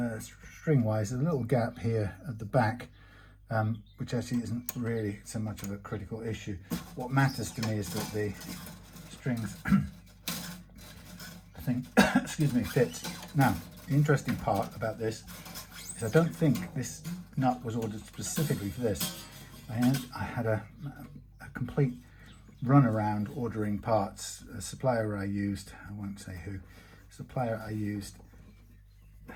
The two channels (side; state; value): both; identical; correlation 1.00